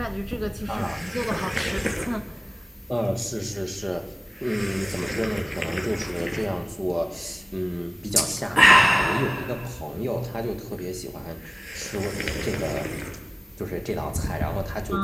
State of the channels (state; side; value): identical; both; correlation 1.00